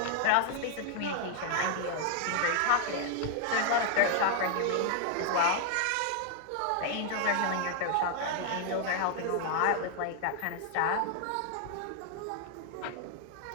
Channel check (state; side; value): different; both; correlation 0.00